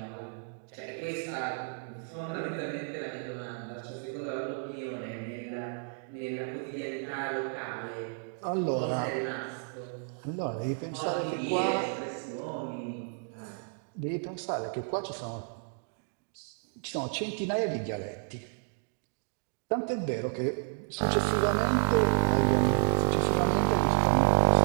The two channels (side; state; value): left; silent; 55 dB below the other